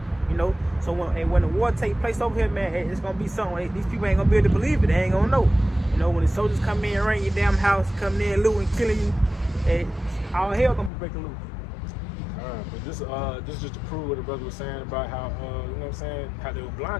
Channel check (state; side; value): drops out; right; at 10.9 s